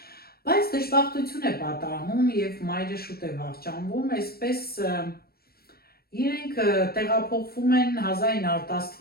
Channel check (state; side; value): late; right; 0.45 ms